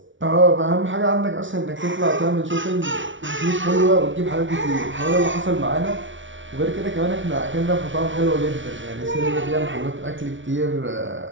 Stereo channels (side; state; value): left; late; 0.56 ms